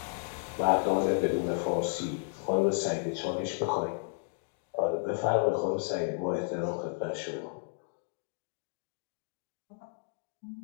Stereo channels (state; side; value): silent; right; digital silence